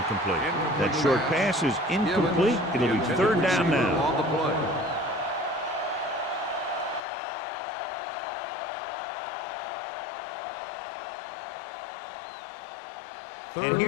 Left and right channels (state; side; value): drops out; right; at 7.0 s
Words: That short pass is incomplete. It'll be 3rd down now. On the play. And